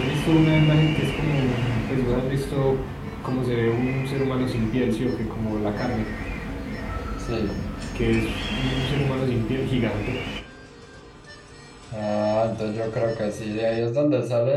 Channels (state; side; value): identical; both; correlation 1.00